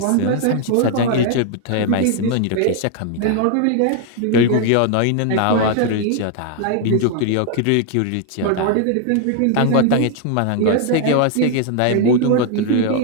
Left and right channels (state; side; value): different; both; correlation 0.00